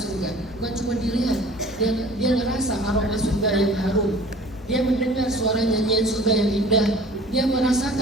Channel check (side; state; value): both; normal; correlation 0.46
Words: bukan cuma dilihat. Dia ngerasa aroma surga yang harum. Dia mendengar suara nyanyian surga yang indah. Dia